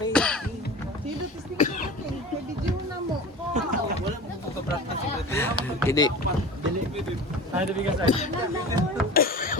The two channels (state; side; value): normal; both; correlation 0.35